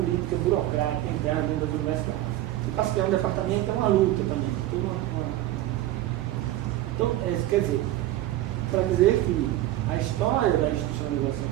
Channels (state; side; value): quieter; left; 14.8 dB